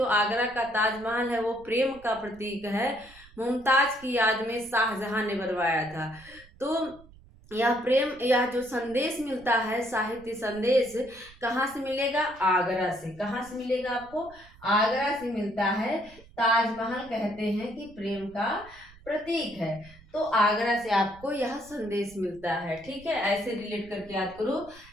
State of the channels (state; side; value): noise; right; rumble, 23 dB below the sound